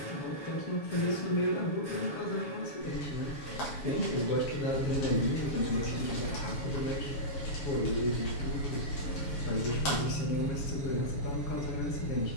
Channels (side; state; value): right; late; 7.0 ms